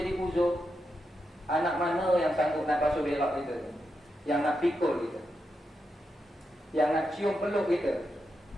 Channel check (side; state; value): both; normal; correlation 0.86